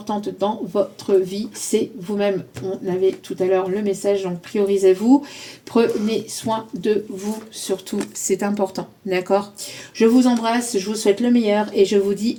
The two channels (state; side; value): identical; both; correlation 1.00